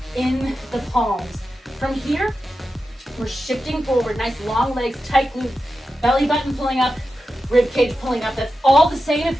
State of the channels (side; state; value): both; normal; correlation 0.91